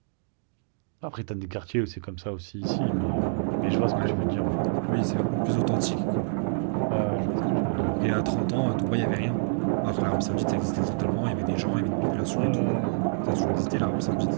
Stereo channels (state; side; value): silent; left; digital silence